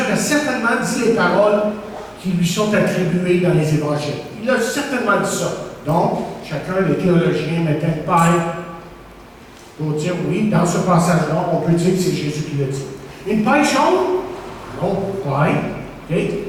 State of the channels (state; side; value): identical; both; correlation 1.00